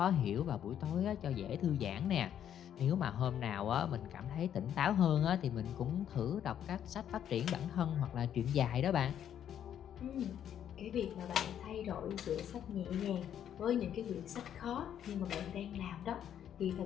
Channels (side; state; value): right; quieter; 9.8 dB